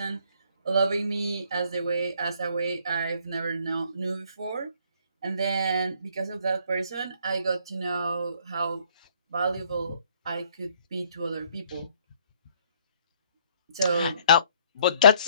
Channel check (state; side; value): inverted; both; correlation -0.63